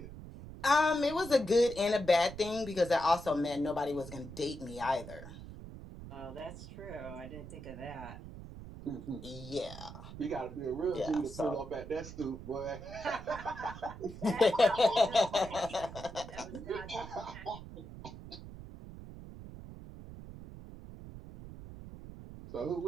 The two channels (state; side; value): noise; right; rumble, 13 dB below the sound